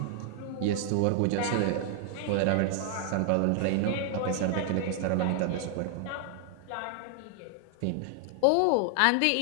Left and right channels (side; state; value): both; different; correlation 0.00